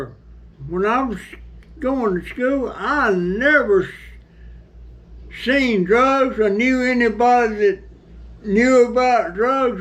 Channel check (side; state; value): both; identical; correlation 1.00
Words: when I was going to school, I never seen drugs or knew anybody that knew about drugs